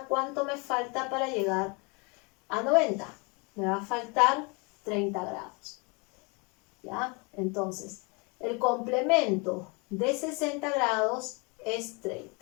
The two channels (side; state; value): right; quieter; 30.7 dB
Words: ¿cuánto me falta para llegar a 90? Me va a faltar 30 grados. ¿Ya? Entonces, el complemento de 60 grados es